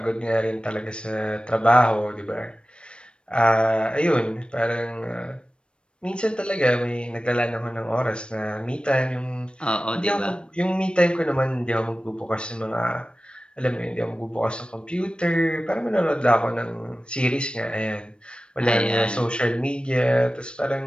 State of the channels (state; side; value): late; right; 0.056 ms